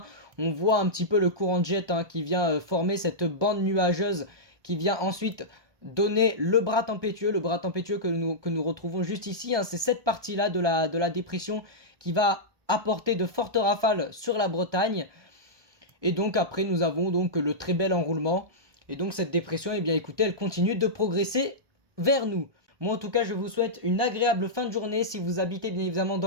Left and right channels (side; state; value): left; late; 1.2 ms